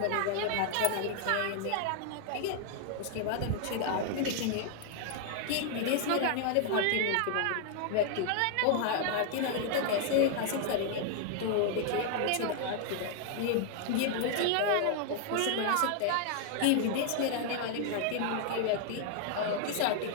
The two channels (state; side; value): different; both; correlation 0.00